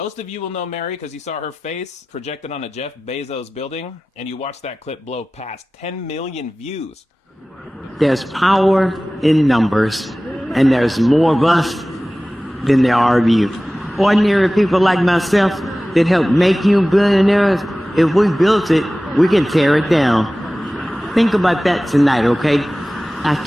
of you will know Mary because you saw her face projected on a Jeff Bezos building, and you watched that clip blow past 10 million views. There's power in numbers, and there's more of us than there are of you. Ordinary people like myself that help make you billionaires, if we built it, we can tear it down. Think about that tonight, okay?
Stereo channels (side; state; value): both; normal; correlation 0.97